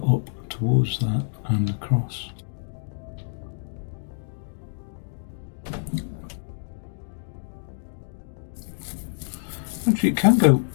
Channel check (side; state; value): right; silent; digital silence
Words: up towards that and across. Actually, it can go